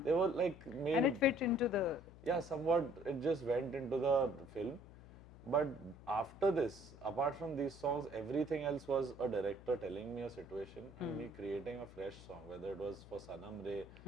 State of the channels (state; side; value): noise; left; hum, 18 dB below the sound